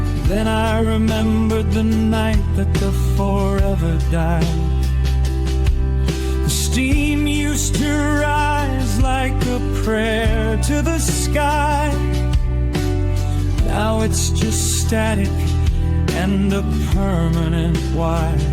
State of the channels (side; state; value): both; identical; correlation 1.00